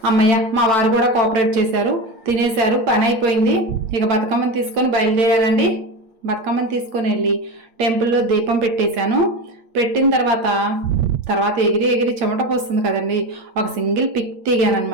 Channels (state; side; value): late; left; 8.6 ms